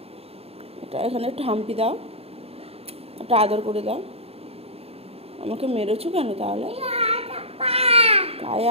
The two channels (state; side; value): late; left; 0.29 ms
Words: এটা এখানে একটু হাম্পি দাও, একটু আদর করে দাও। আমাকে মেরেছো কেন তাহলে? গায়ে